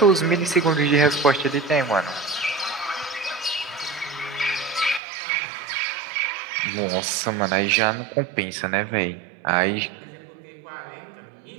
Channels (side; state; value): left; drops out; at 5.0 s